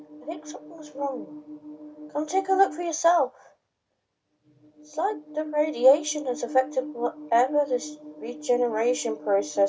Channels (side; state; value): both; identical; correlation 1.00